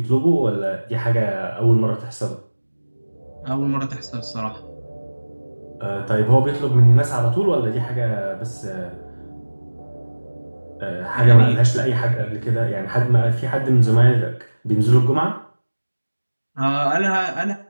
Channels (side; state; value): both; inverted; correlation -1.00